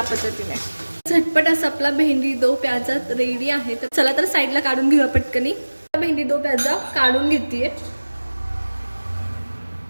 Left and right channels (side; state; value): both; inverted; correlation -1.00